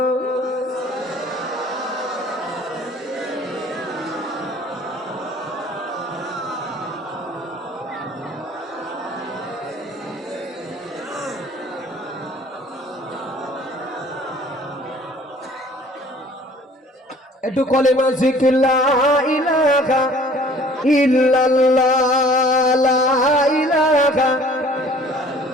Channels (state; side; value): normal; both; correlation 0.52